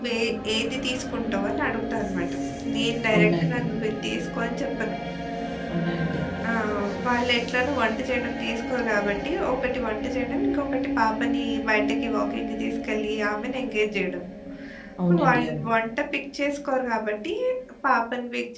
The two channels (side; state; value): both; identical; correlation 1.00